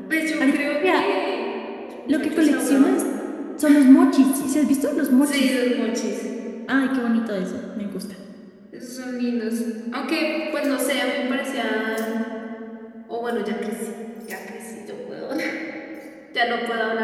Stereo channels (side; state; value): both; identical; correlation 1.00